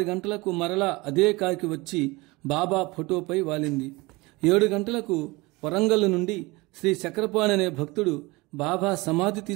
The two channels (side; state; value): left; quieter; 23.4 dB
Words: గంటలకు మరలా అదే కాకి వచ్చి బాబా ఫోటోపై వాలింది. 7 గంటలకు వరంగల్ నుండి శ్రీ చక్రపాణి అనే భక్తుడు బాబా సమాధి